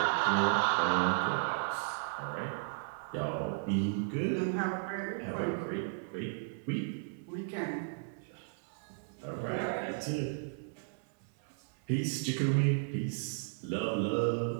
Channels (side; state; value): left; silent; 55 dB below the other